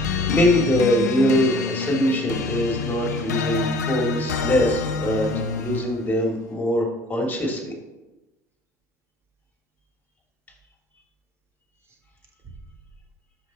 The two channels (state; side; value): normal; both; correlation 0.52